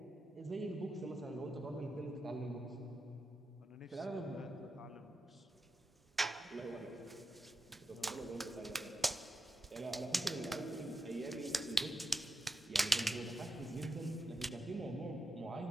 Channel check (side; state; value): both; normal; correlation 0.87